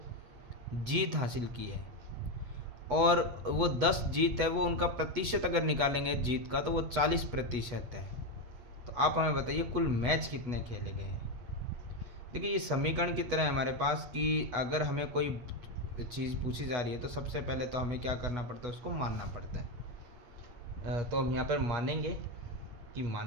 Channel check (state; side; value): late; left; 8.1 ms